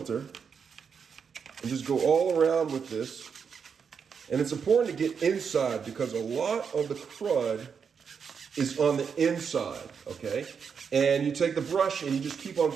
and just go all around with this. And it's important to get inside because a lot of the crud is on the inside, okay? And you take the brush and you just keep on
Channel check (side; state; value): left; quieter; 6.4 dB